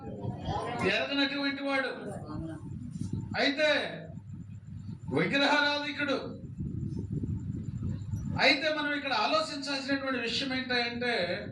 ఎరగనటువంటి వాడు. అయితే విగ్రహారాధికుడు. అయితే మనం ఇక్కడ ఆలోచించాల్సినటువంటి విషయం ఏంటంటే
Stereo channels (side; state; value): both; identical; correlation 1.00